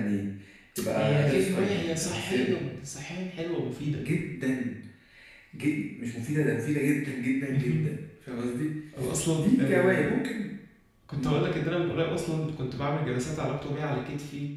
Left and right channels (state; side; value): identical; both; correlation 1.00